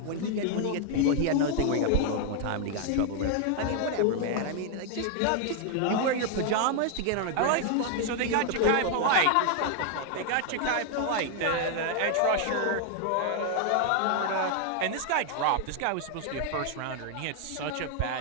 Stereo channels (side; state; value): both; different; correlation 0.00